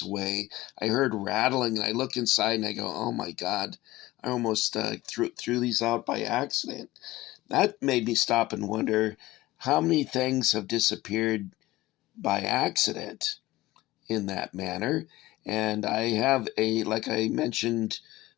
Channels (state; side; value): quieter; right; 17.8 dB